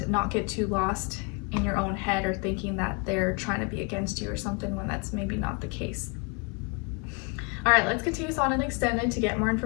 not get too lost in your own head or thinking that they're trying to be against you or something when that's maybe not the case. All right, let's continue this on an extended to get more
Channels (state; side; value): quieter; right; 31.8 dB